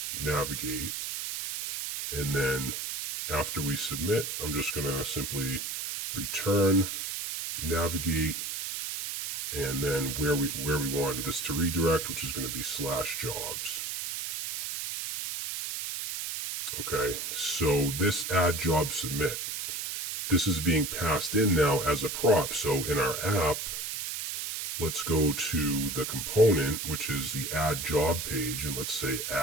navigate. And then after we submit, I'm just going to simply return navigate, and then where we want this to redirect, which is going to be /jobs. Okay, so this add job submit, this is being passed in now as a prop. So in our app, let's go to the component, which is the add job page, and let's say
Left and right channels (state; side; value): noise; right; hiss, 4 dB below the sound